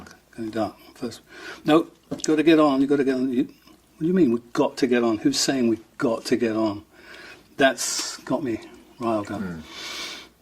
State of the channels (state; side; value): identical; both; correlation 1.00